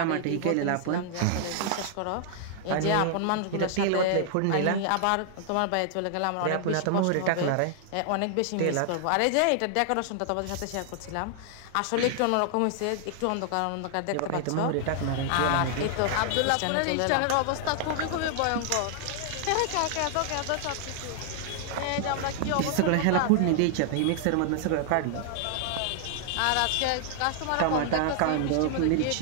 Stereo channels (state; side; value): different; both; correlation 0.00